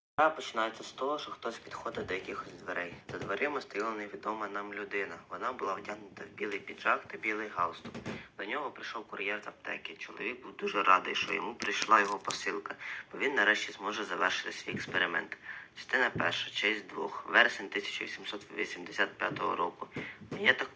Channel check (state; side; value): identical; both; correlation 1.00